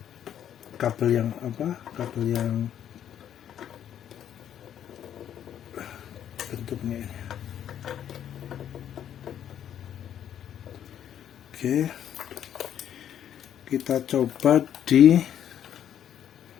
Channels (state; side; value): quieter; right; 10.0 dB